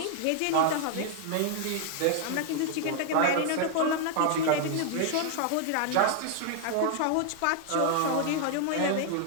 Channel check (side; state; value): both; different; correlation 0.00